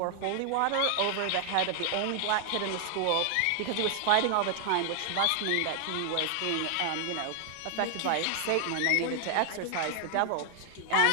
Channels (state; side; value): different; both; correlation 0.00